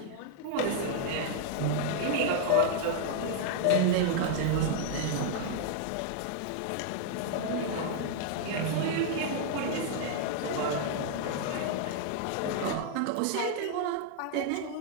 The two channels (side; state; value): both; different; correlation -0.01